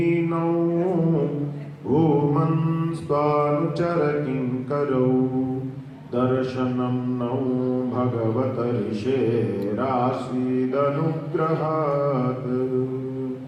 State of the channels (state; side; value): identical; both; correlation 1.00